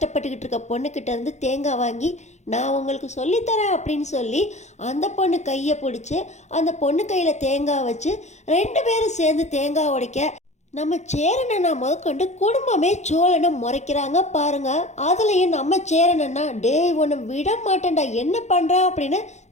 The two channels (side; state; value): right; late; 0.33 ms